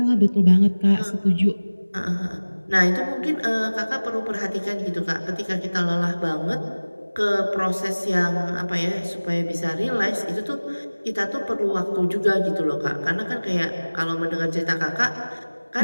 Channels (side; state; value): both; inverted; correlation -1.00